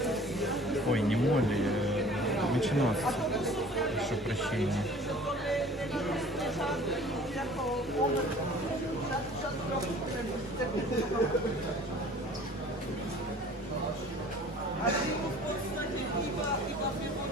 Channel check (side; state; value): both; normal; correlation 0.48